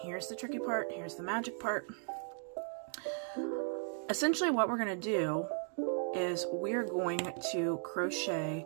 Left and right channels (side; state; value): left; silent; 53 dB below the other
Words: here's the tricky part, here's the magic part. Essentially what we're going to do is we're going to